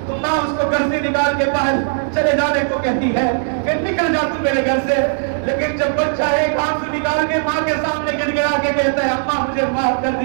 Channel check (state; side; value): silent; left; digital silence